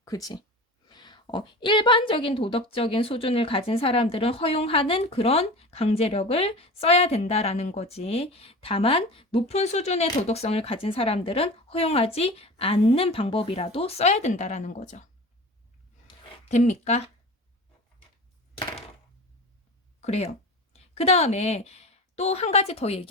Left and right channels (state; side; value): normal; both; correlation 0.33